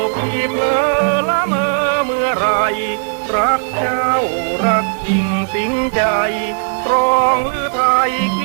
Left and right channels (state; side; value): silent; left; digital silence